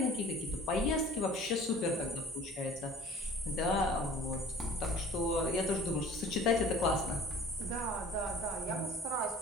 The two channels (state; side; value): normal; both; correlation 0.47